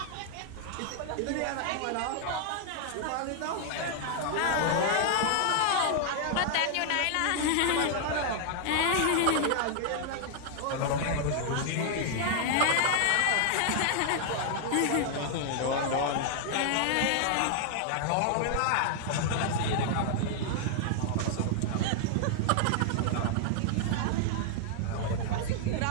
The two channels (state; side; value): different; both; correlation 0.00